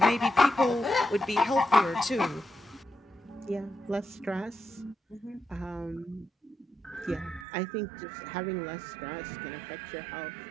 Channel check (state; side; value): drops out; left; at 7.5 s